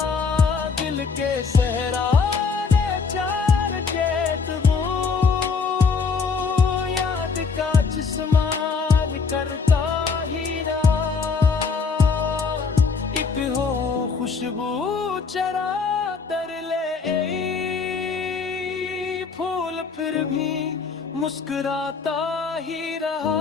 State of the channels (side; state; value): right; quieter; 5.1 dB